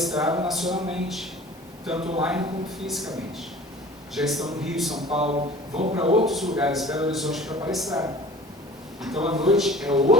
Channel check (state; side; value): normal; both; correlation 0.44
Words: nacionalmente, tanto online como fisicamente. Já estão no Rio, São Paulo, vão para outros lugares, Belo Horizonte, para palestrar. Então, à noite é